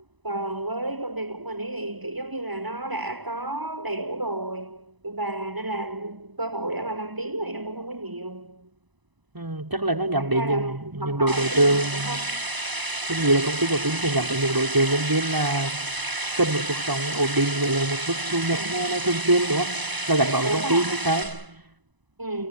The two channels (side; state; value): left; late; 1.0 ms